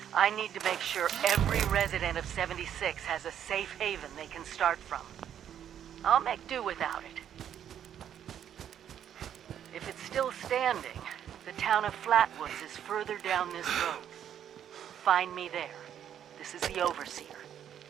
I need to make sure every resident of 76 has a safe haven they can start from. I'll make do without it. If it's still standing, the town of Flatwoods is further down this road. Find me there. This is the Overseer,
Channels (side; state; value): left; quieter; 9.7 dB